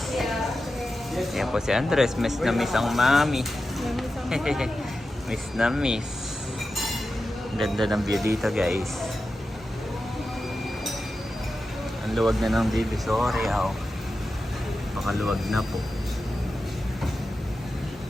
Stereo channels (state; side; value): normal; both; correlation 0.92